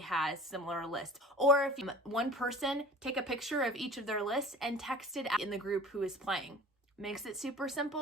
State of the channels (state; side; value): normal; both; correlation 0.43